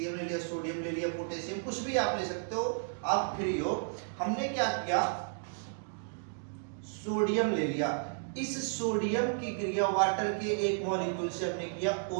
ले लिया, सोडियम ले लिया, पोटेशियम, कुछ भी आप ले सकते हो, आप फ्री हो। हमने क्या किया, सोडियम ले लिया। इस सोडियम की क्रिया वाटर के एक मॉलिक्यूल से हमने किया,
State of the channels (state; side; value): silent; left; digital silence